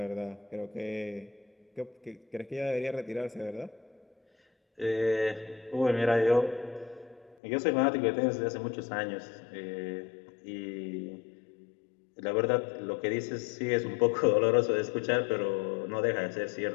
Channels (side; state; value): right; drops out; at 7.4 s